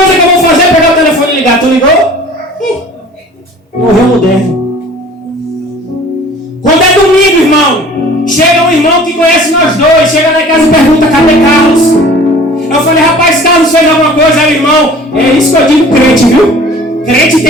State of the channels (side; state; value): both; normal; correlation 0.47